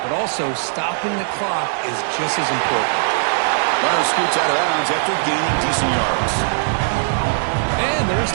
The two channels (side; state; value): left; silent; digital silence